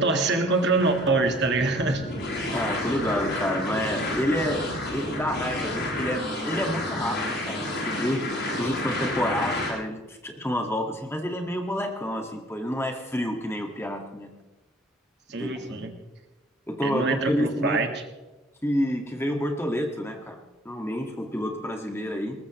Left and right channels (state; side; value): normal; both; correlation 0.55